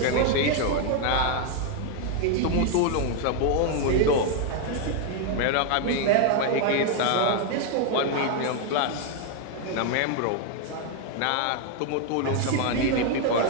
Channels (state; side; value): different; both; correlation 0.00